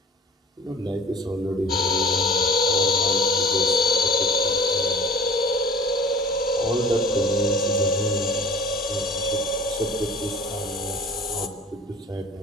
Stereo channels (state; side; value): normal; both; correlation 0.43